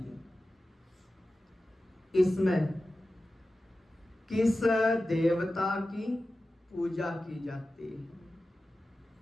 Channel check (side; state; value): both; normal; correlation 0.94